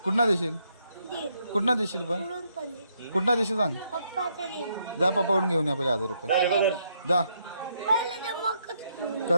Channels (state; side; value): inverted; both; correlation -0.75